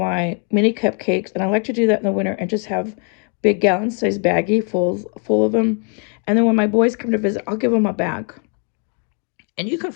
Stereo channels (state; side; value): quieter; right; 39.2 dB